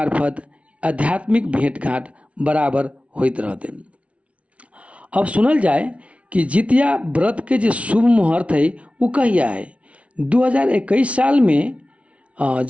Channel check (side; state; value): left; late; 0.063 ms